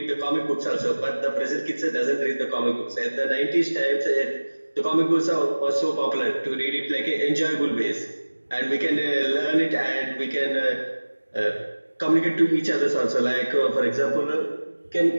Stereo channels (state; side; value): inverted; both; correlation -1.00